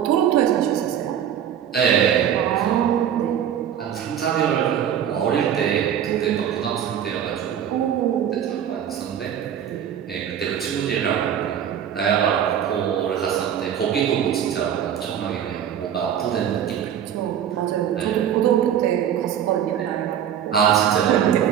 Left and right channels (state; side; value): quieter; left; 9.4 dB